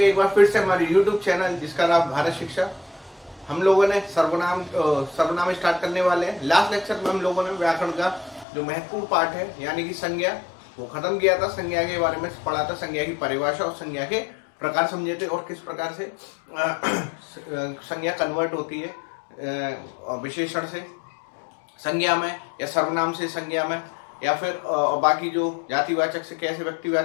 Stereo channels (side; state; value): right; drops out; at 8.5 s